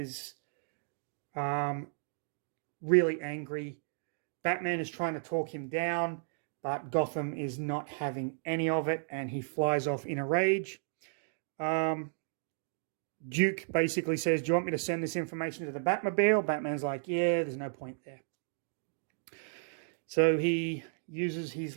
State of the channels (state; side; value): silent; left; digital silence